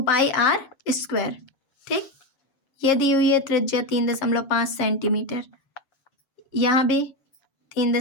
पाई r स्क्वायर। ठीक, ये दी हुई है त्रिज्या 3.5 सेंटीमीटर, यहाँ भी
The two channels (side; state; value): right; late; 7.4 ms